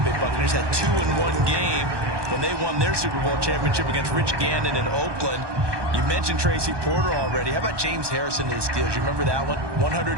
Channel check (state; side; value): late; left; 1.2 ms